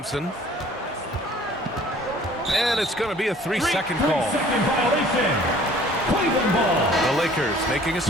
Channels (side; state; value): both; normal; correlation 0.52